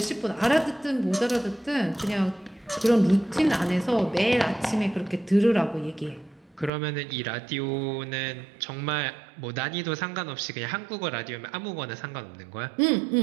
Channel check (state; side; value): drops out; left; at 6.7 s